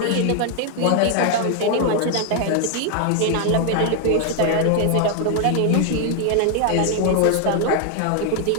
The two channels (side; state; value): both; different; correlation 0.00